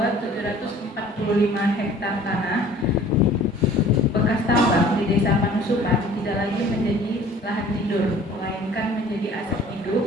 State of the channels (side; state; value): both; normal; correlation 0.50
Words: 745 hektar tanah bekas tambang di Desa Panusupan tidak lagi menjadi lahan tidur, melainkan menjadi aset